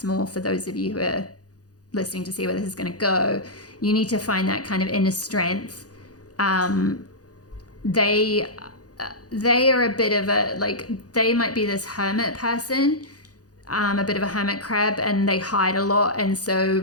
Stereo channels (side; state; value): right; late; 0.67 ms